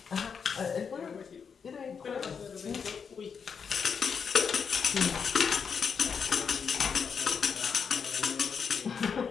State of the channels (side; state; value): right; quieter; 6.3 dB